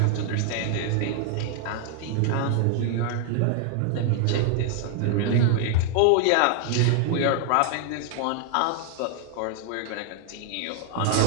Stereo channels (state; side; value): different; both; correlation 0.00